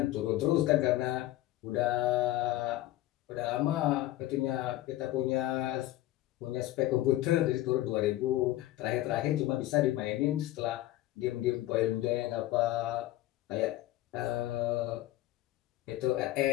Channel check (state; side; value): quieter; right; 15.6 dB